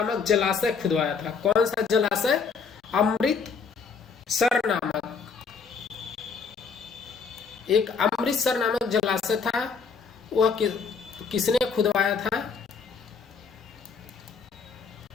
जलाशय खुदवाया था। कौन सा जलाशय? अमृतसर नामक, एक अमृतसर नामक जलाशय था। वह किसने खुदवाया था?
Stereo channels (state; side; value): quieter; right; 5.5 dB